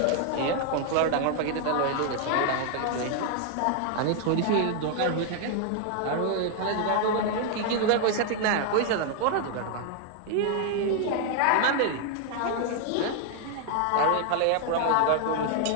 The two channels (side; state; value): both; different; correlation 0.00